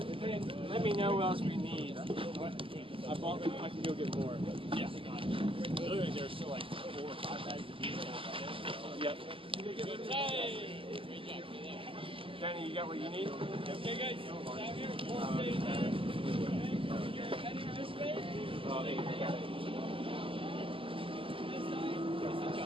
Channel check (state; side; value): late; left; 0.26 ms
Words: Let me know what else we need. I can go get more. Yeah. Literally, there's still like 4 or 5 bags of beef. Yep. Danny, you got what you need? Okay, guys. Down here. You're heading this way? Oh, they got it.